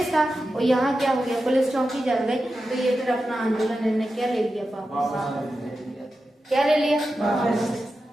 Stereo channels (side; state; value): both; normal; correlation 0.91